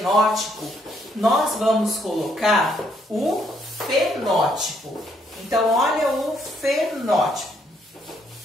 nós vamos colocar o fenótipo. Então, olha o fenótipo.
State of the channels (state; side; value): normal; both; correlation 0.71